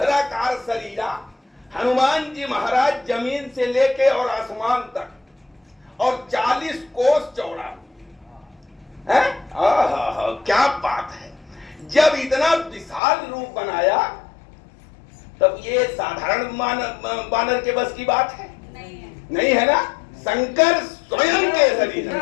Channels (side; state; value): right; drops out; at 13.0 s